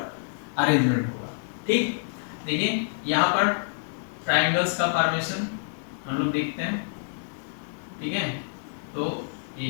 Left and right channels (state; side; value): silent; right; digital silence